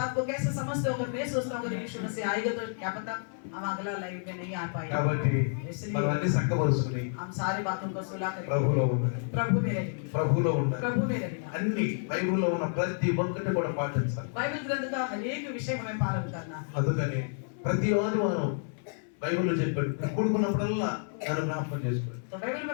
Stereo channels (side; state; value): right; silent; digital silence